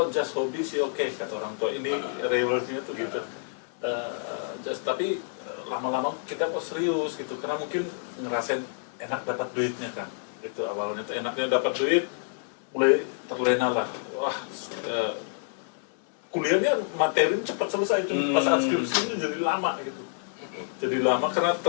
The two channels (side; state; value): right; silent; 59 dB below the other